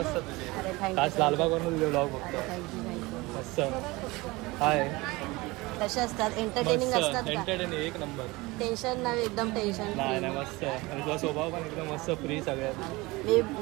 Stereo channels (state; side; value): quieter; left; 22.3 dB